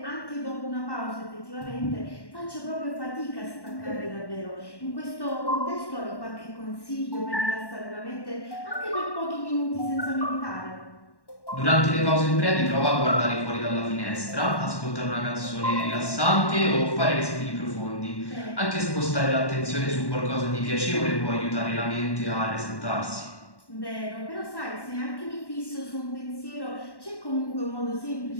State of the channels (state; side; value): late; right; 1.1 ms